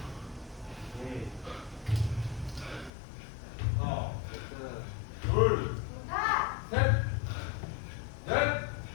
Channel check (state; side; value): drops out; right; at 2.9 s